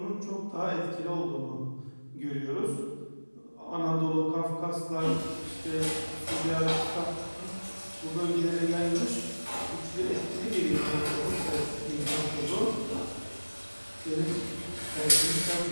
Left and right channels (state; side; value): inverted; both; correlation -1.00